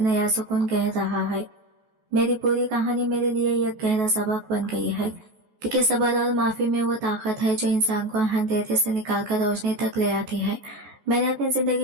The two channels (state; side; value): late; left; 14 ms